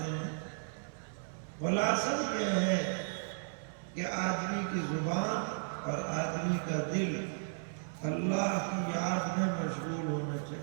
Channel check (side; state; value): left; silent; 55 dB below the other